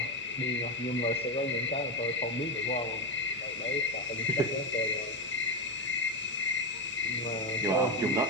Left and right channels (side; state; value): both; normal; correlation 0.12